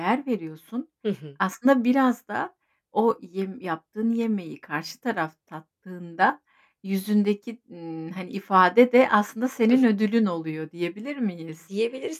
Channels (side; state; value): both; identical; correlation 1.00